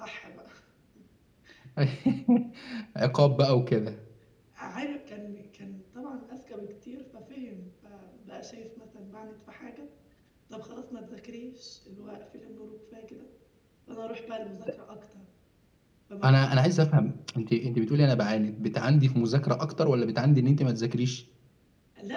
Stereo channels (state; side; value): identical; both; correlation 1.00